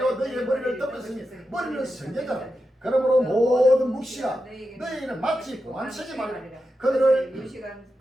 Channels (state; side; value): normal; both; correlation 0.89